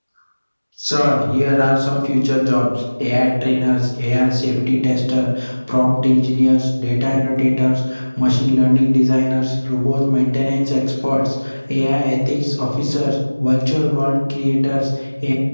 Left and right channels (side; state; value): both; inverted; correlation -1.00